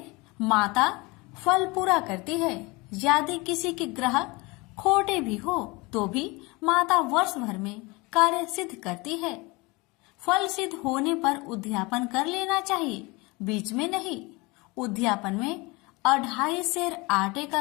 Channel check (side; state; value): right; quieter; 25.1 dB